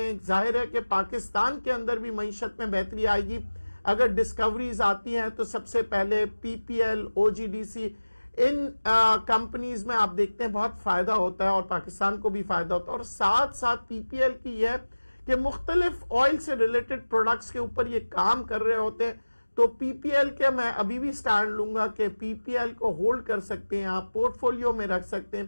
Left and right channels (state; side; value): inverted; both; correlation -1.00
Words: ظاہر ہے کہ پاکستان کے اندر بھی معیشت میں بہتری آئے گی اگر ڈسکوریز آتی ہیں، تو سب سے پہلے پی پی ایل، او جی ڈی سی، ان کمپنیز میں آپ دیکھتے ہیں بہت فائدہ ہوتا ہے اور پاکستان کو بھی فائدہ ہوتا ہے۔ اور ساتھ ساتھ پی پی ایل کی یہ ہے کہ مختلف آئل سے ریلیٹڈ پروڈکٹس کے اوپر یہ کام کر رہے ہوتے ہیں، تو پی پی ایل کے میں ابھی بھی سٹینڈ لوں گا کہ پی پی ایل کو ہولڈ کر سکتے ہیں، آپ پورٹ فولیو میں رکھ سکتے ہیں۔